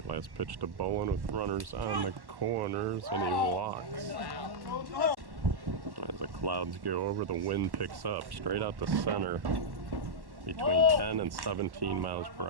last pitch to Bowen with runners on the corners, and he walks. As the clouds go over, the wind picks up straight out the center, between 10 and 17 miles per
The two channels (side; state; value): left; late; 1.1 ms